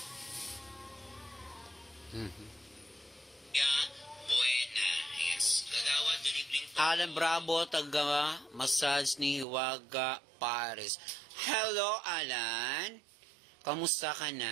Alan Bravo, taga massage ni Hiwaga Paris. Hello Alan, kamusta ka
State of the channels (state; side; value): drops out; left; at 9.5 s